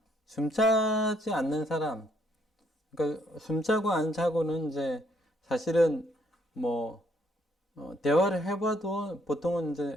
숨차지 않는 사람, 그러니까 숨차고 안 차고는 이제 사실은 뭐 대화를 해봐도 보통은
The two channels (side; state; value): both; normal; correlation 0.69